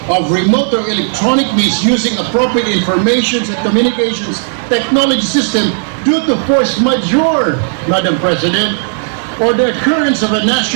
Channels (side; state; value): left; silent; digital silence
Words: of remote or electronic means using appropriate information and communications technology system due to force majeure, Madam President, or the occurrence of a